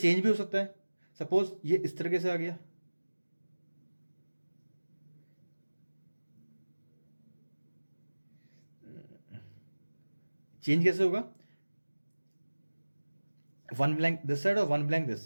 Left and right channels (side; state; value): both; inverted; correlation -1.00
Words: भी हो सकता है, सपोज ये इस तरीके से आ गया, चेंज कैसे होगा? 1 ब्लैंक दिस साइड और 1 ब्लैंक दिस